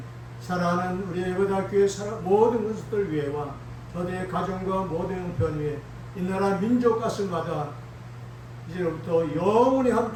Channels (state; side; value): identical; both; correlation 1.00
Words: 사랑하는 우리 예배대학교의 모든 것들 위해와 저들의 가정과 모든 편 위에 이 나라 민족 가슴마다 이제부터 영원히